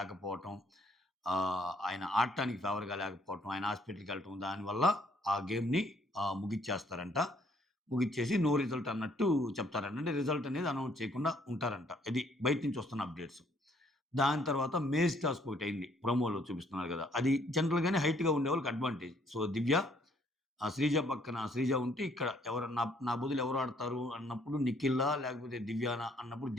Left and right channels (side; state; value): both; normal; correlation 0.65